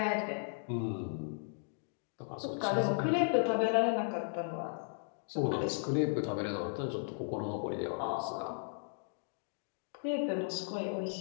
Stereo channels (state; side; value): silent; right; digital silence